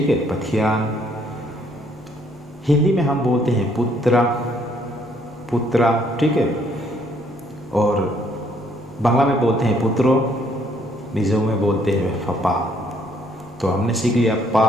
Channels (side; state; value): right; noise; rumble, 28 dB below the sound